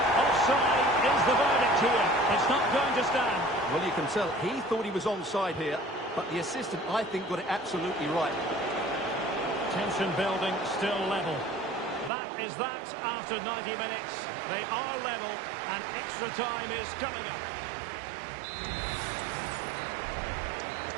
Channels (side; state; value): left; drops out; at 12.1 s